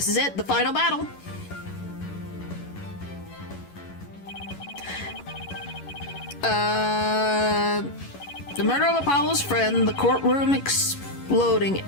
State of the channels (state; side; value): late; right; 11 ms